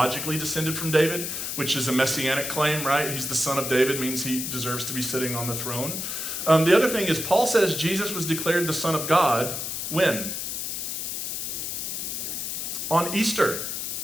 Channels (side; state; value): left; noise; hiss, 4 dB below the sound